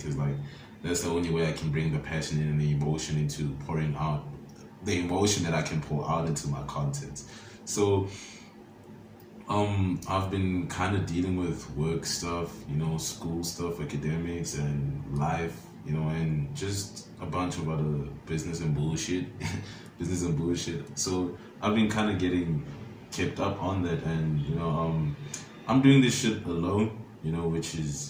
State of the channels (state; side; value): identical; both; correlation 1.00